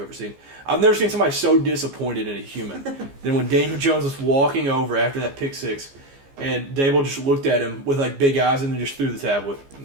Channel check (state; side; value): late; left; 15 ms